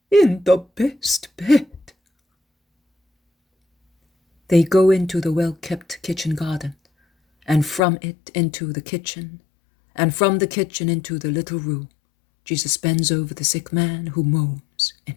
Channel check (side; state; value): right; drops out; at 7.8 s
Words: In the best bed. They go into the well-kept kitchen garden, and from it into the kitchen, and from the kitchen into the little room. Jesus bends over the sick man who moans in